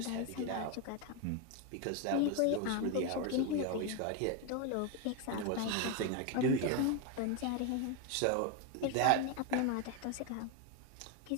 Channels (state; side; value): different; both; correlation 0.02